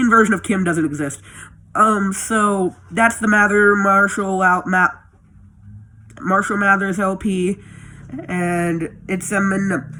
version of Kim doesn't exist. So that's the Marshall Mathers LP, and it's Eminem.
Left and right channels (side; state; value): both; identical; correlation 1.00